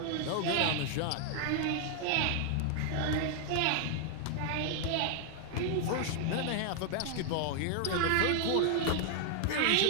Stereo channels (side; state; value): both; different; correlation 0.00